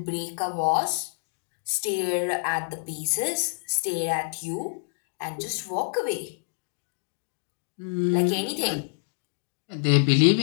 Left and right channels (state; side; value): silent; right; digital silence